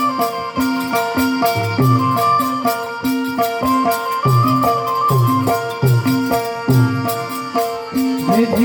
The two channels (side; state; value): both; identical; correlation 1.00